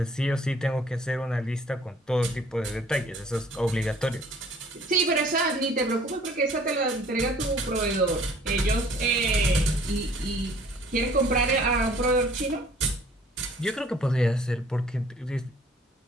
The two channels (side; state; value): both; normal; correlation 0.55